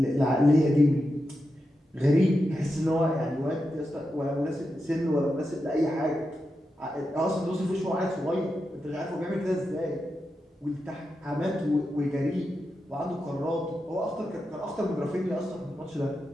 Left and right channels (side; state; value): both; normal; correlation 0.88